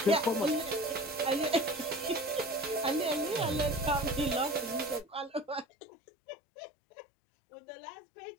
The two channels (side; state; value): right; drops out; at 5.7 s